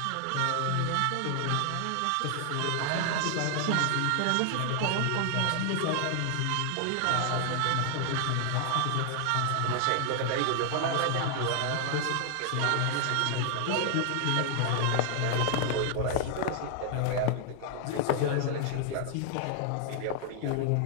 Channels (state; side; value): different; both; correlation 0.00